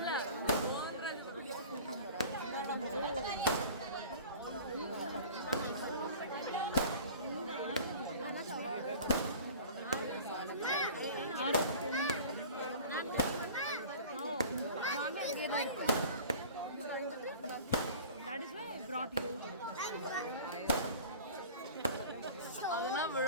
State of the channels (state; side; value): inverted; both; correlation -0.41